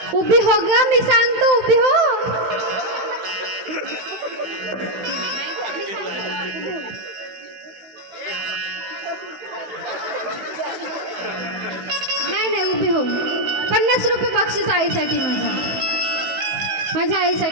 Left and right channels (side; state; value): left; late; 15 ms